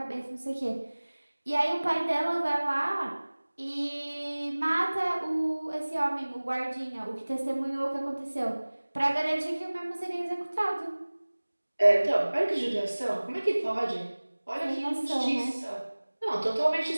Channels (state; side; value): inverted; both; correlation -1.00